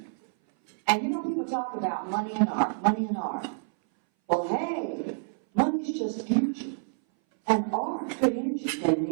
And you know, people talk about money and art, money and art. Well, hey, money's just energy. And art, good energy, can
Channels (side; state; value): left; silent; 58 dB below the other